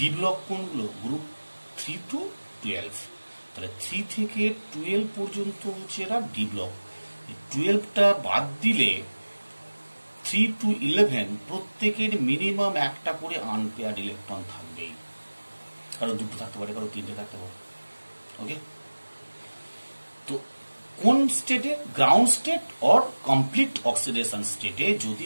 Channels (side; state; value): both; inverted; correlation -1.00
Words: ব্লক কোনগুলো, গ্রুপ 3 to 12। তাহলে 3 থেকে 12 পর্যন্ত হচ্ছে এরা ডি ব্লক। 12টা বাদ দিলে 3 to 11 প্রত্যেকের মিনিমাম একটা করে আনপেয়ার্ড ইলেকট্রন থাকবেই, কারো 2টো থাকতে পারে, কারো 3টে থাকতে পারে। ওকে, তো কোন স্টেটে? Ground state or complete oxidation স্টেটে যদি